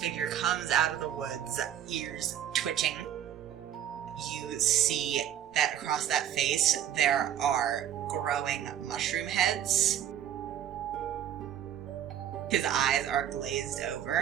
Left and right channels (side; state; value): left; quieter; 10.4 dB